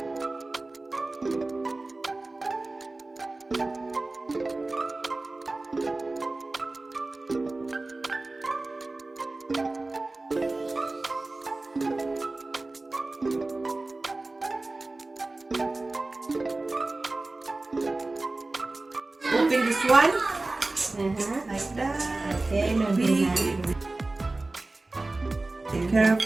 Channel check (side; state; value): left; quieter; 3.1 dB